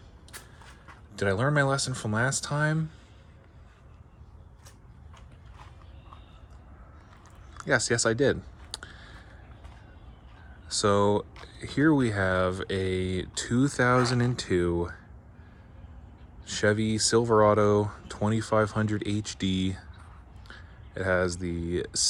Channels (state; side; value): identical; both; correlation 1.00